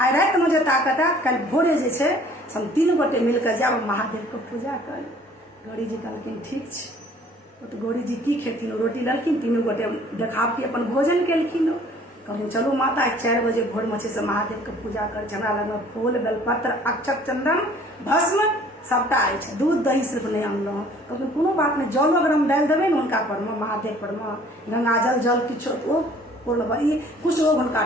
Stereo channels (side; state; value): both; normal; correlation 0.54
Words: राति में जे ताकत है, कल भोरे जे छै हम 3 गोटे मिलकर जाब महादेव के पूजा कर। गौरी जी कहलखिन ठीक छै। तो गौरी जी की खेथिन? रोटी लेलखिन, 3 गोटे देखावटी अपन भोजन केलखिन। कहलिन चलू माता 4 बजे भोर में से महादेव के पूजा कर। हमरा लग फूल, बेलपत्र, अक्षत, चंदन, भस्म सबटा अछि, दूध दही सिर्फ नहीं अनलहुँ। कहलखिन कोनो बात नहीं, जल अगर हम डालि देबै ने हुनका पर में, महादेव पर में, गंगा जल किछो ओ पूर्ण ई कुछ रोग हुनका